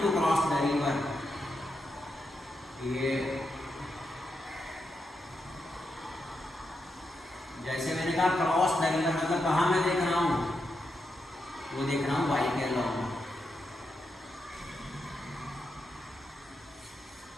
to cross the river, ये जैसे मैंने कहा क्रॉस द रिवर मतलब कहाँ मैं देख रहा हूँ, वो देख रहा हूँ वाई के अलॉन्ग।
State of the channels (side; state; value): both; normal; correlation 0.85